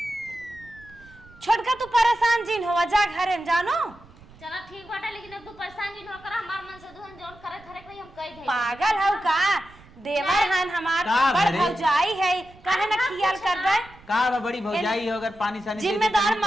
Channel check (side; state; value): right; noise; rumble, 24 dB below the sound